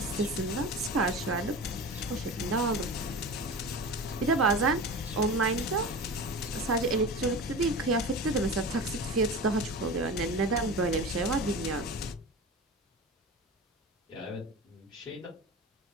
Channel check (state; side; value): normal; both; correlation 0.31